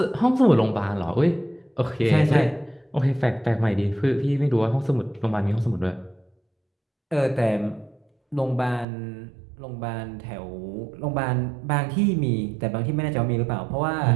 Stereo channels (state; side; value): drops out; left; at 8.8 s